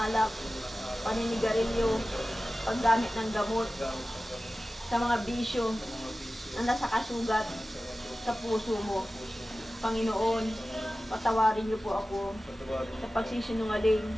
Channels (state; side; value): normal; both; correlation 0.95